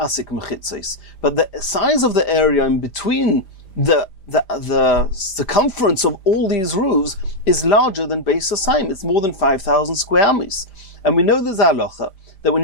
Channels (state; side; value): late; right; 5.0 ms